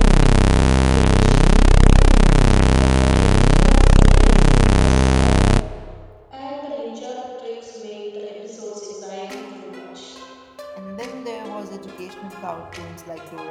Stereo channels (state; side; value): identical; both; correlation 1.00